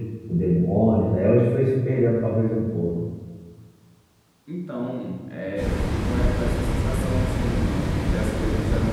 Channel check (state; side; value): identical; both; correlation 1.00